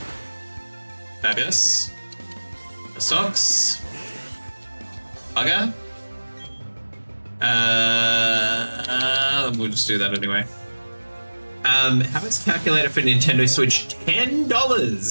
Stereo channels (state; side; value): inverted; both; correlation -1.00